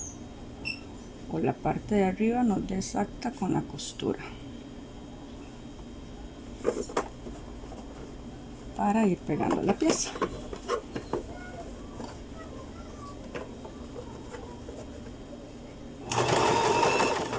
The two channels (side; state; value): both; identical; correlation 1.00